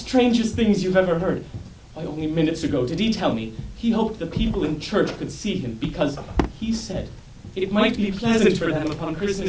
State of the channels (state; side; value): identical; both; correlation 1.00